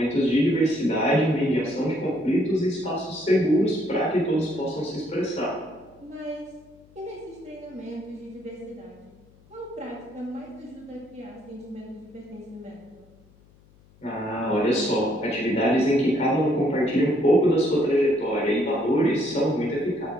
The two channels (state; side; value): noise; left; hum, 29 dB below the sound